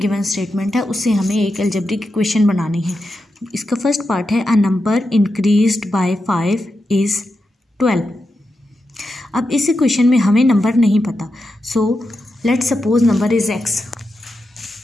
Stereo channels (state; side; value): normal; both; correlation 0.88